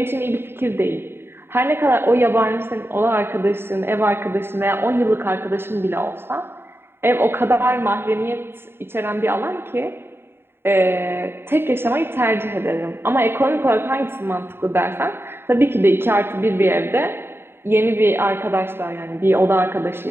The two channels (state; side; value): late; left; 0.11 ms